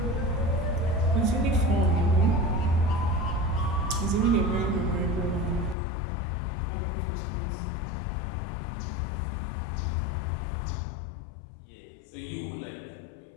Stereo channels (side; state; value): right; drops out; at 5.8 s